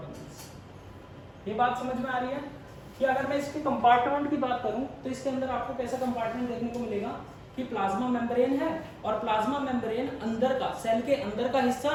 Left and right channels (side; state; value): both; identical; correlation 1.00